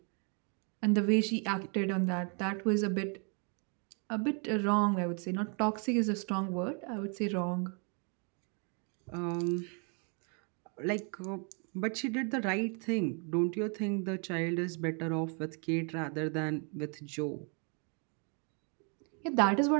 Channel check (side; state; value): left; quieter; 38.4 dB